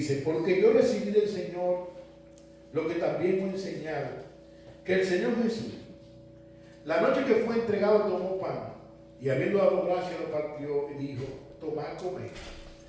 porque yo recibí del Señor lo que también he enseñado, que el Señor Jesús, la noche que fue entregado, tomó pan, y habiendo dado gracias lo partió y dijo: tomad, comed,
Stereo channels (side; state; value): both; identical; correlation 1.00